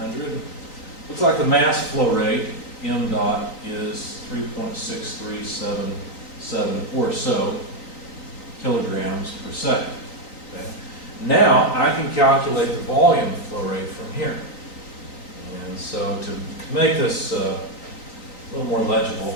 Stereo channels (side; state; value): right; late; 3.8 ms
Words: Looks like the mass flow rate, m dot, is 3.6377 or so kilograms per second. Okay? Now I can calculate the volume flow rate from here. And so to make this a little more